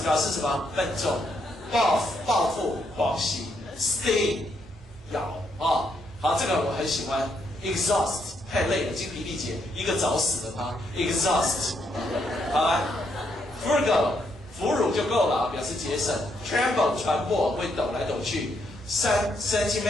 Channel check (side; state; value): both; normal; correlation 0.76